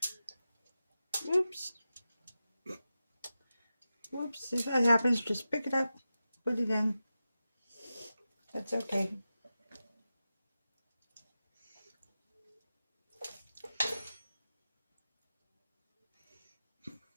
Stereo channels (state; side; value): inverted; both; correlation -0.92